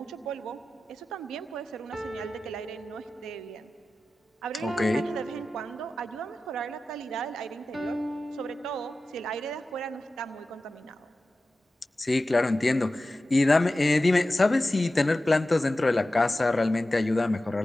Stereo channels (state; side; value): normal; both; correlation 0.94